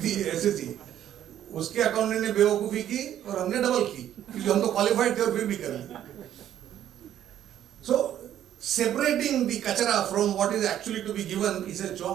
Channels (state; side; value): quieter; left; 11.1 dB